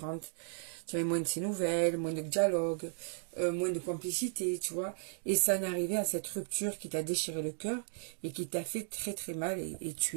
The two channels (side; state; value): left; silent; 54 dB below the other